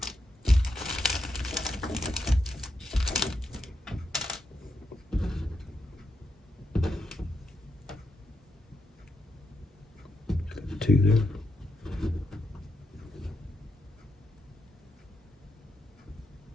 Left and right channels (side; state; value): both; normal; correlation 0.82